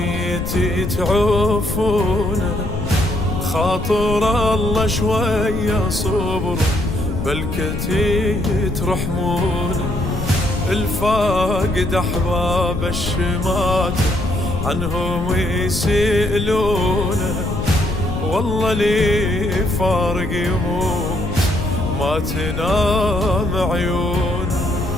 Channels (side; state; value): left; noise; rumble, 5 dB below the sound